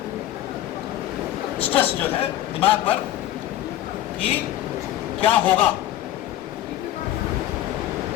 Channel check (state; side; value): quieter; right; 13.5 dB